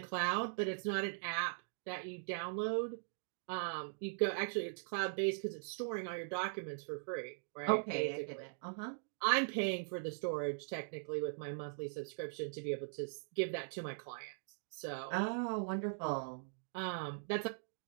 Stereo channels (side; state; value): left; silent; digital silence